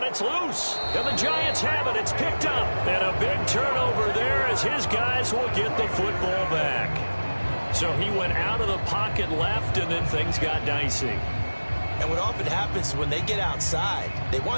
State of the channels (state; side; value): inverted; both; correlation -1.00